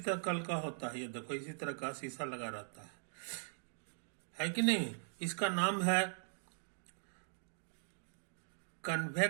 कल का होता है। ये देखो, इसी तरह का शीशा लगा रहता है कि नहीं। इसका नाम है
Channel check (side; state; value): left; silent; digital silence